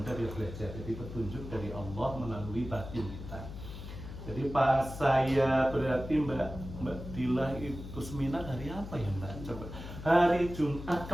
dia belajar. Jadi petunjuk dari Allah melalui batin kita. Jadi pas saya berarti Mbak Dila itu seminar hari apa ya Mbak? Coba hari Jumat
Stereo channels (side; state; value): left; noise; hum, 11 dB below the sound